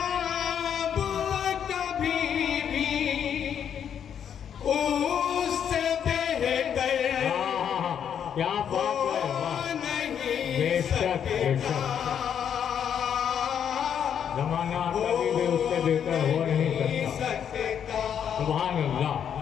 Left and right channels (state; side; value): quieter; right; 8.5 dB